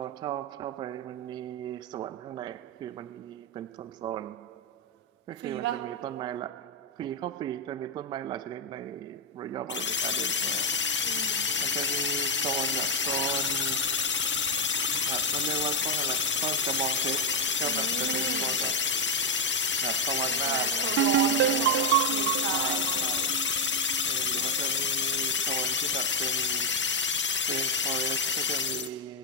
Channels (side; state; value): both; normal; correlation 0.01